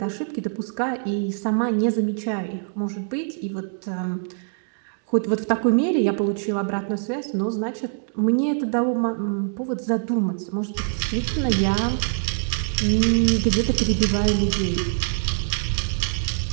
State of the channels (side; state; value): left; silent; digital silence